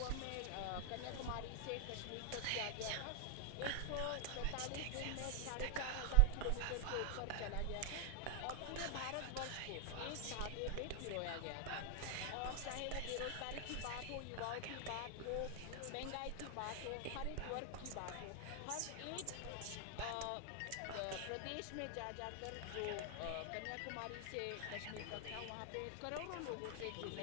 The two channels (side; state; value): both; different; correlation 0.00